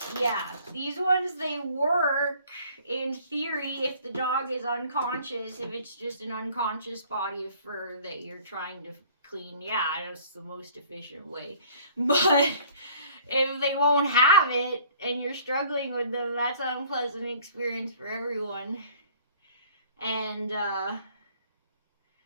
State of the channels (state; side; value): inverted; both; correlation -0.54